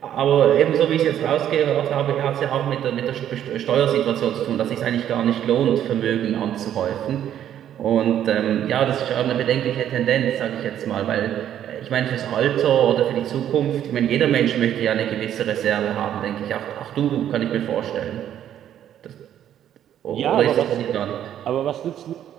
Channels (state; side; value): quieter; left; 10.6 dB